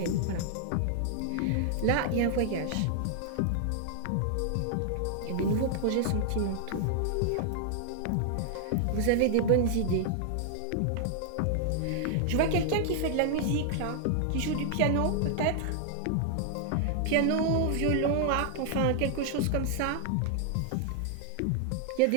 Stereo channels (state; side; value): different; both; correlation 0.00